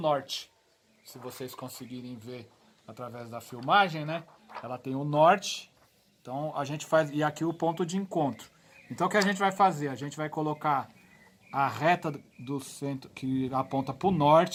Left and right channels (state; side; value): identical; both; correlation 1.00